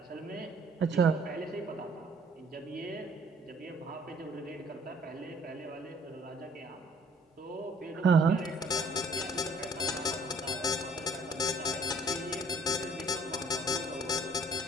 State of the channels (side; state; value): both; normal; correlation 0.57